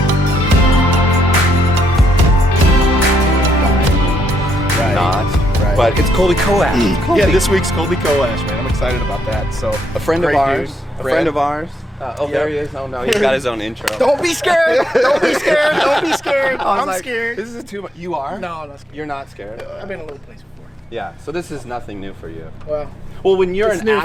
But it's Colby Coash. Yeah, this week's Colby Coash, man. I'm excited about that. So a friend of ours. A friend of ours. There he is. Oh no, he's got his own intro. Don't be scared. Don't be scared. Don't be scared. I'm scared. This is too much. You are? No, I'm not scared. You're not scared? I've been in a little place before. Yeah, so this is nothing new for you. Well, when you're an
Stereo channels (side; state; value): both; normal; correlation 0.76